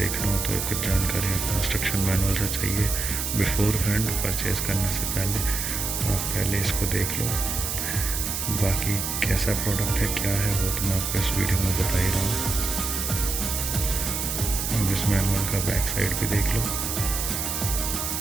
हो तो कुछ जानकारी आपको इंस्ट्रक्शन मैनुअल से चाहिए बिफोर हैंड परचेज़ करने से पहले, आप पहले इसको देख लो। बाकी कैसा प्रोडक्ट है क्या है वो तो मैं आपको इस वीडियो में बता ही रहा हूँ। अब इस मैनुअल का बैक साइड भी देख लो।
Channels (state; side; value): noise; right; hiss, 2 dB below the sound